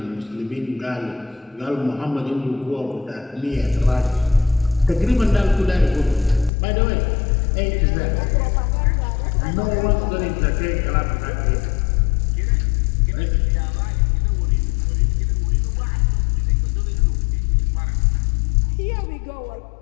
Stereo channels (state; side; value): drops out; right; at 6.5 s